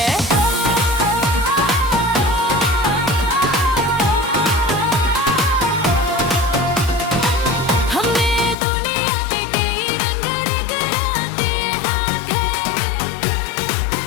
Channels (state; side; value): drops out; right; at 8.6 s